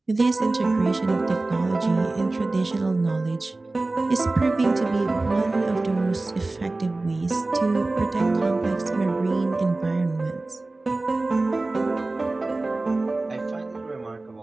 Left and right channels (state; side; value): quieter; left; 3.1 dB